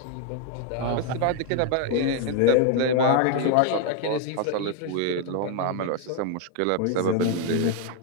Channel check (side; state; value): both; different; correlation 0.00